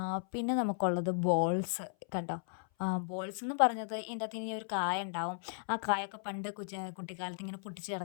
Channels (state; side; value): silent; right; 54 dB below the other